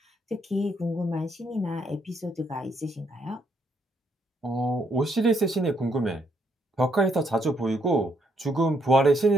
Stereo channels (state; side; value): normal; both; correlation 0.73